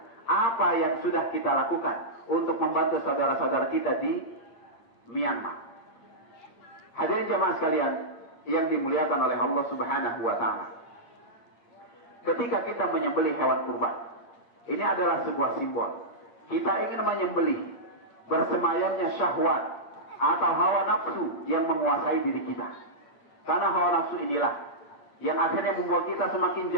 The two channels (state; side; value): late; right; 8.7 ms